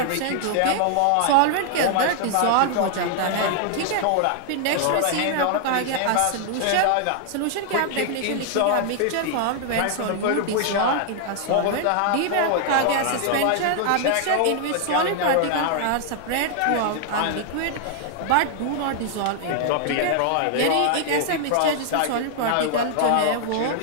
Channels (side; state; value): both; different; correlation 0.00